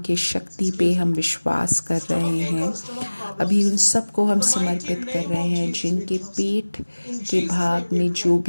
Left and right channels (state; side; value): inverted; both; correlation -1.00